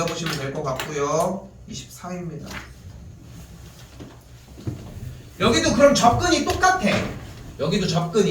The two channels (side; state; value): both; identical; correlation 1.00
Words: 될 것 같고요. 24입니다. 여기도 그럼 접근이 똑같아. 여기도